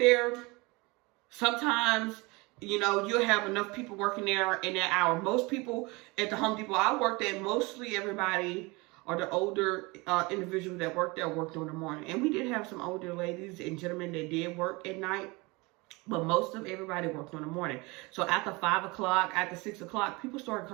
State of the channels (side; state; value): left; quieter; 25.2 dB